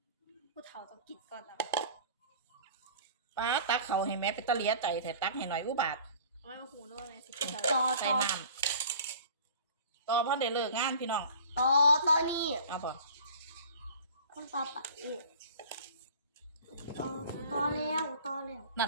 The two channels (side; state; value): both; inverted; correlation -0.44